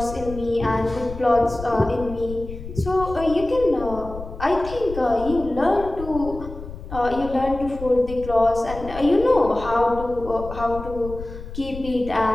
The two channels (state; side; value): noise; left; rumble, 11 dB below the sound